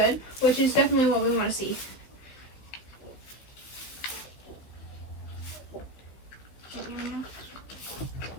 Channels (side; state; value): right; late; 15 ms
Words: which is definitely what we want to see. It's